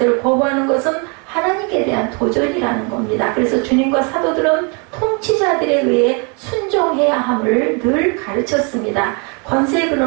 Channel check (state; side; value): quieter; left; 34.1 dB